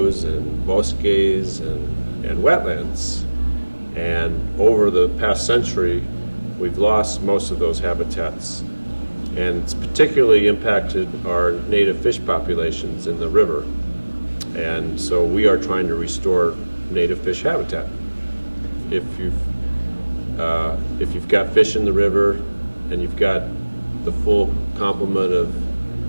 and bosques and wetlands. And over the past century, we've lost most of those habitats. And it's particularly impacted our native fish populations in the river. And so we are trying to restore native fish habitat. If you've got fish in the river and you've got the full complement of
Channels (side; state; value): both; inverted; correlation -1.00